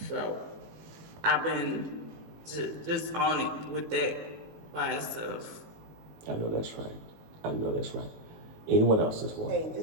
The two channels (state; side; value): late; left; 18 ms